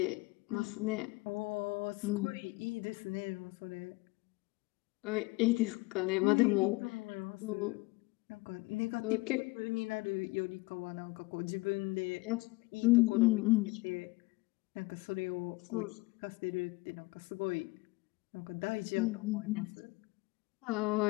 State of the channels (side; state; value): right; quieter; 23.2 dB